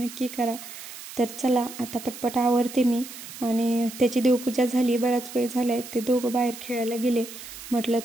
करा. तर चला आता पटपट आवरते मी. आणि त्याची देवपूजा झाली, बराच वेळ झाला आहे. ते दोघं बाहेर खेळायला गेले, म्हटलं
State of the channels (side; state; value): right; noise; hiss, 13 dB below the sound